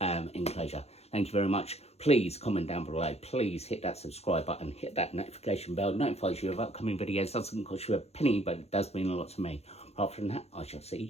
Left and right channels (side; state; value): right; late; 0.30 ms